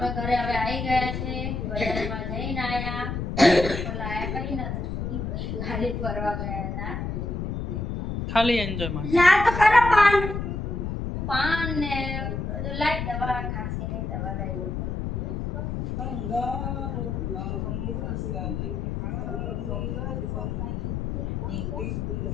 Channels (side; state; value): left; noise; rumble, 3 dB below the sound